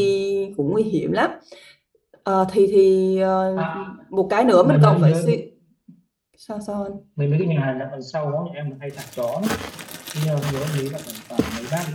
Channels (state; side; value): identical; both; correlation 1.00